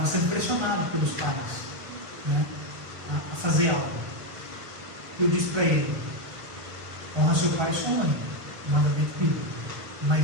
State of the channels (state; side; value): late; left; 1.6 ms